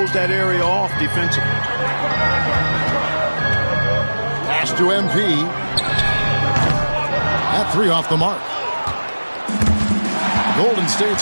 that area off defensively. Pass to MP. That 3 off the mark. Golden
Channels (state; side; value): inverted; both; correlation -1.00